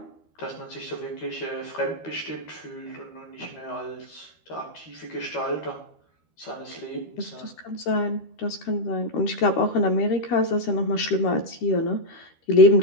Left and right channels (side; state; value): right; late; 12 ms